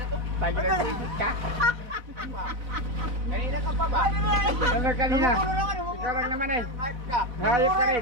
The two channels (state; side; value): late; left; 4.0 ms